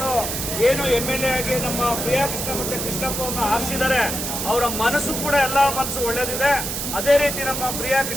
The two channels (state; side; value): noise; right; hiss, 3 dB below the sound